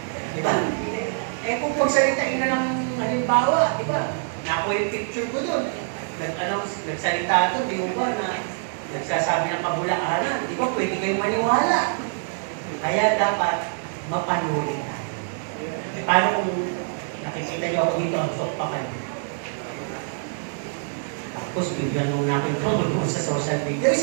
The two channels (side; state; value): left; silent; 62 dB below the other